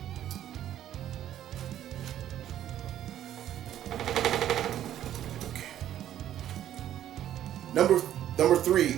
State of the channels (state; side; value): quieter; left; 11.5 dB